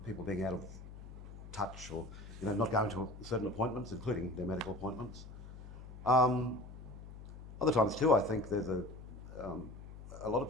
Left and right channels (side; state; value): left; noise; hum, 13 dB below the sound